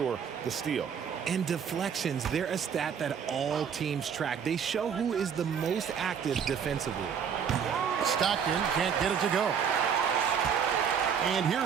the steal. And deflections, they're a stat that all teams track. They show who is the most active defensively. Stockton can't get it to go. And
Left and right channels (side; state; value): left; quieter; 7.4 dB